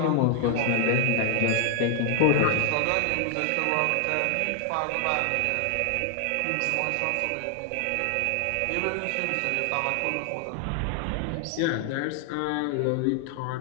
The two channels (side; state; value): both; different; correlation 0.00